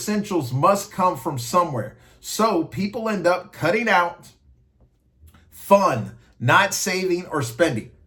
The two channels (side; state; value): both; identical; correlation 1.00